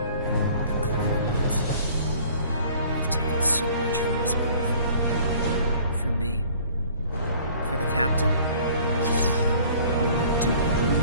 the Klingons. They've taken so much from us both. For me, for the captain, only duty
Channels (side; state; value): both; inverted; correlation -0.52